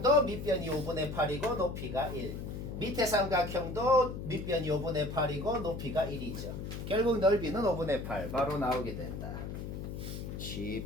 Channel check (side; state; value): left; noise; hum, 7 dB below the sound